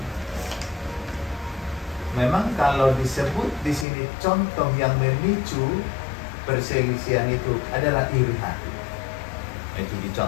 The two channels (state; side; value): drops out; right; at 3.9 s